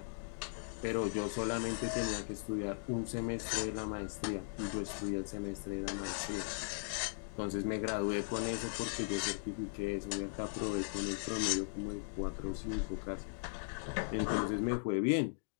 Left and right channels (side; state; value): right; silent; digital silence